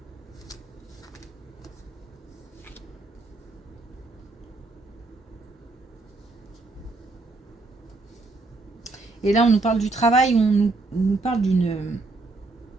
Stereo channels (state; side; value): quieter; left; 3.3 dB